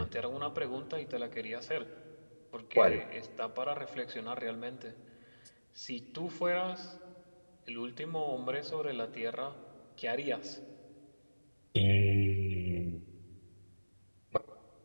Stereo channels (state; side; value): inverted; both; correlation -1.00